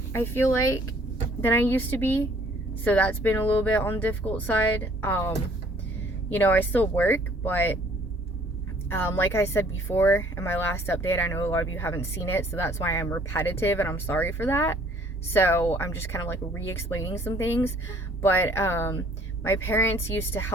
I feel like, than I used to be. So that's been a little bit on the difficult side. I still work, but like I said before in my last update, I know a lot of you haven't seen it, so that's why I'm repetitive, and I'm sorry for that. So I'm just kind of like re-explaining some things. But my parents used to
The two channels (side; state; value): both; normal; correlation 0.59